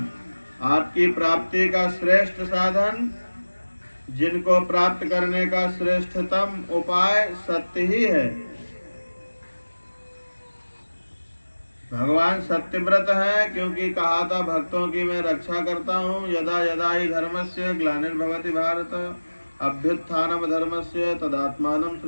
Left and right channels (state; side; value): inverted; both; correlation -1.00